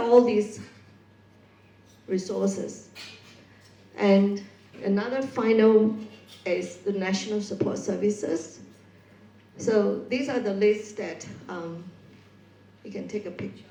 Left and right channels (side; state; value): both; identical; correlation 1.00